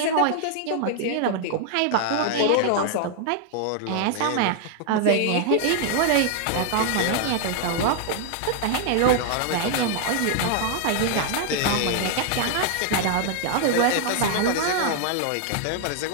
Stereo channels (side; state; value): both; different; correlation 0.00